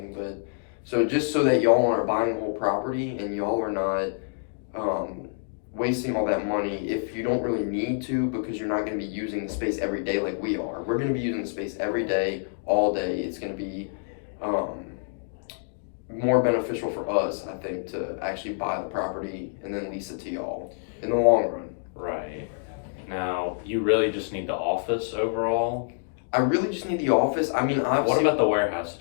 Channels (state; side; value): silent; right; digital silence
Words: But so just so that y'all aren't buying the whole property and y'all are not wasting all that money if you don't really need to, because you're not gonna be using the space every day like we are. We're gonna be using the space every day, all day. It's gonna be more beneficial for us, I think, to actually buy the property and then lease it to y'all in the long run. Right. Now, you really just need the office overall. I really just need the office. I mean, What obviously, about the warehouse